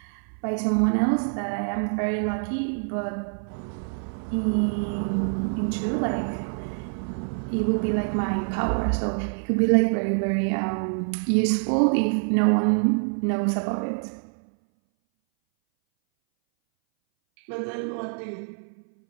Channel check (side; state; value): left; silent; 60 dB below the other